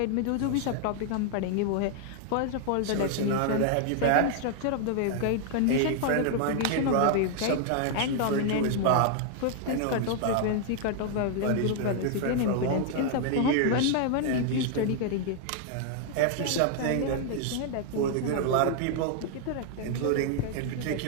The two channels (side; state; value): both; different; correlation 0.00